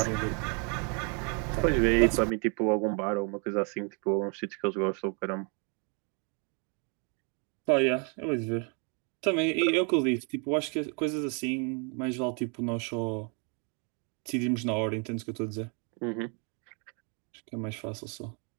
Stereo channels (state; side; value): quieter; left; 36.5 dB